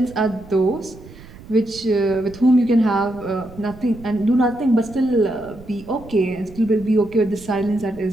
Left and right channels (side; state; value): right; noise; rumble, 19 dB below the sound